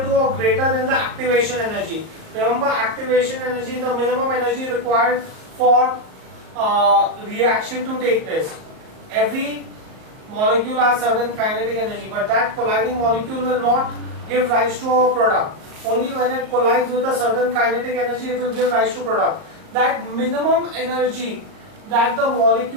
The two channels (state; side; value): late; left; 38 ms